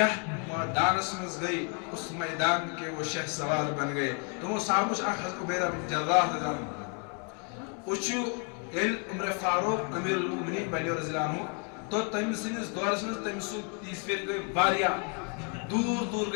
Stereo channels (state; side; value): quieter; right; 38.8 dB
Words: میدانس مز گئی اس میدان کے وہ شہ سوار بن گئے تمو صحابہ حضرت عبیدہ بن جراح رضی اللہ عنہ وچو عمر فاروق امیر المؤمنین بنیو رضی اللہ عنہ تو تم سنس دورس مز تم سو تیس پھر گئی واریا دور دور